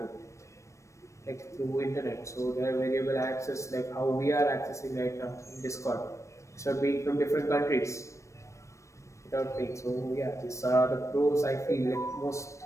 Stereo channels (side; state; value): right; late; 0.15 ms